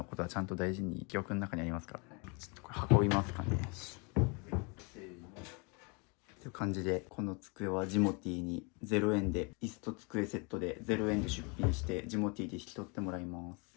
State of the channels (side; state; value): right; quieter; 31.9 dB